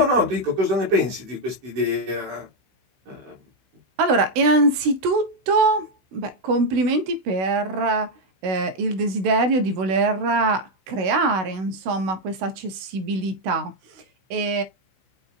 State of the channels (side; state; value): left; late; 16 ms